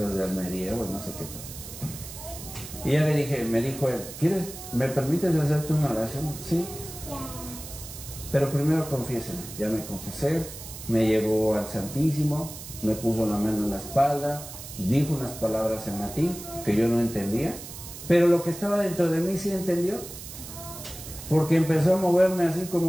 de Almería o no sé qué tal. Y ya le dije, me dijo él, ¿me permites hacerte una oración? Sí. Pero primero confiésame. Ya me confesé, me llevó al Santísimo, me puso la mano en la espalda, dijo unas palabras en latín que yo no entendía, pero lo que estaba dentro de mí sí entendió. Porque empezó a moverme así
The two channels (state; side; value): noise; right; hiss, 12 dB below the sound